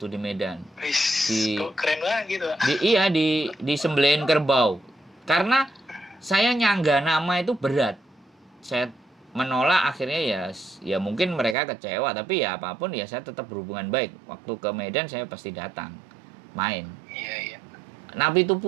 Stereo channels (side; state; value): left; drops out; at 11.6 s